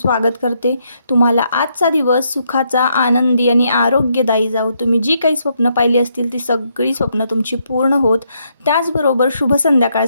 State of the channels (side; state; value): both; inverted; correlation -0.76